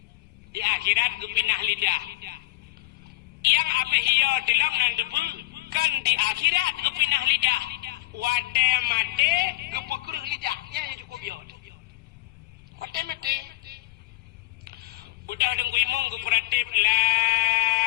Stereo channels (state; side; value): quieter; right; 19.1 dB